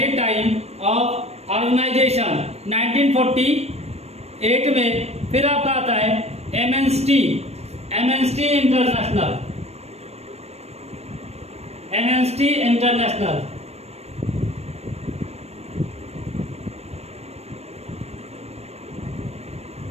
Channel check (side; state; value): left; late; 0.31 ms